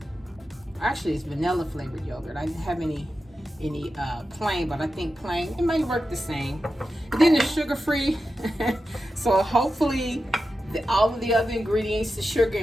actually it's vanilla flavored yogurt. I didn't have any plain, but I think plain, it might work the same. And then it's sugar free, so hopefully all of the other ingredients, the sugar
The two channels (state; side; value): normal; both; correlation 0.91